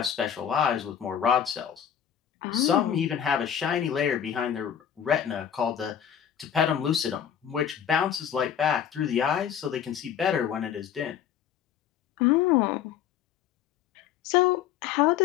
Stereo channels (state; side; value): quieter; right; 9.0 dB